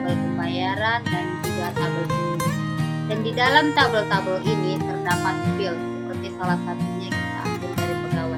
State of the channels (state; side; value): identical; both; correlation 1.00